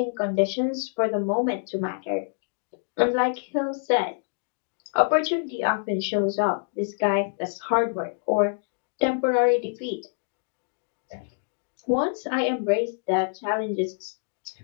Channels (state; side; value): silent; right; digital silence